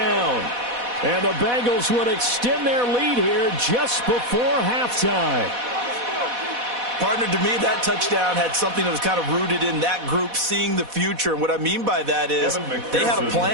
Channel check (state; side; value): late; left; 4.1 ms